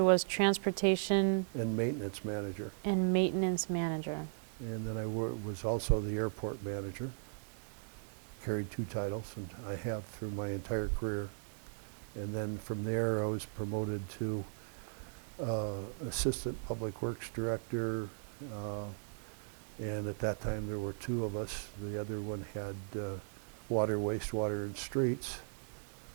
transportation and maintenance manager. and maintenance manager. And then I was also the airport manager. Carried 2 titles, and I have through my entire career. And then from there I was promoted to assistant public works director, and at that time there were 2 of us. The other one had water, wastewater, and streets.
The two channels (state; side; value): silent; left; digital silence